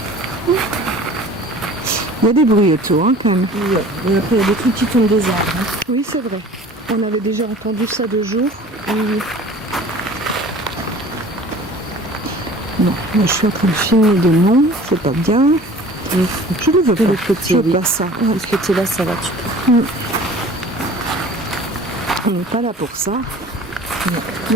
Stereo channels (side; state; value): both; normal; correlation 0.45